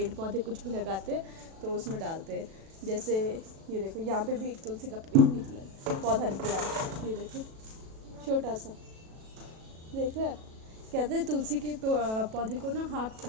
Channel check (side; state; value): left; late; 37 ms